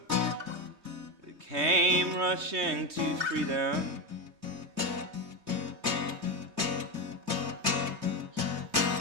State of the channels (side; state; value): left; late; 3.3 ms